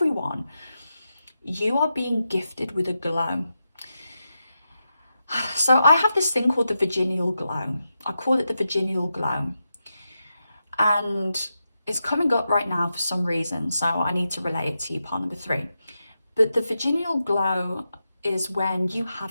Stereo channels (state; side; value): inverted; both; correlation -0.88